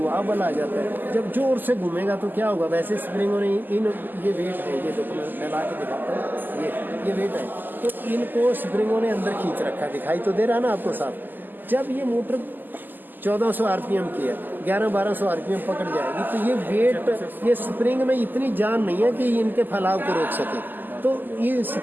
बल आ जाता है। जब जोर से घूमेगा तो क्या होगा, वैसे स्प्रिंगों ने इन ये वेट है, ये देखो मैं फैला के दिखाता हूँ, ये वेट है, तो इनको स्प्रिंगों ने अंदर खींच रखा, दिखाई तो दे रहा ना आपको साफ। जब ये मोटर 1400 आरपीएम की है, 1100-1200 आरपीएम पकड़ जाएगी, तो ये वेट, ये स्प्रिंग में इतनी जान नहीं है कि इनके फैलाव को रोक सके, तो ये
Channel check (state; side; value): late; left; 0.088 ms